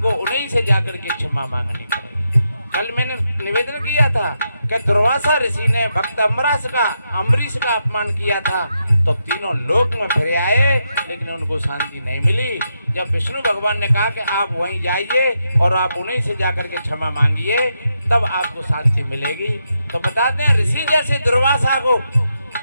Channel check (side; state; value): both; inverted; correlation -0.84